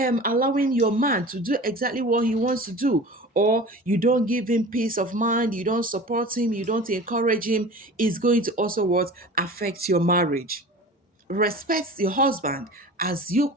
allowing your man to do exactly what he wants to do, or you don't give him peace of mind, you don't support him, you don't encourage him, it's going to also what affect your marriage. Respect your husband as you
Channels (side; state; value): both; normal; correlation 0.38